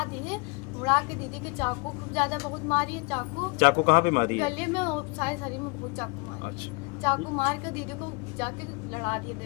दी है। मुड़ा के दीदी के चाकू खूब ज्यादा बहुत मारी है। चाकू कहाँ पे मारी है? गले में और सारे शरीर में बहुत चाकू मारी। अच्छा, चाकू मार के दीदी को जाके लड़ा दिए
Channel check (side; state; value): right; quieter; 29.2 dB